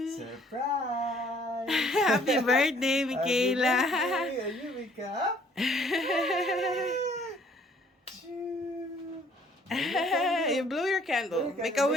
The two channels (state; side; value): normal; both; correlation 0.60